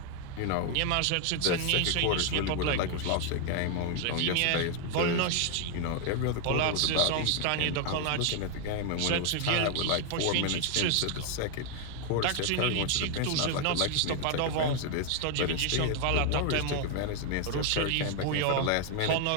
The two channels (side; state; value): both; different; correlation 0.00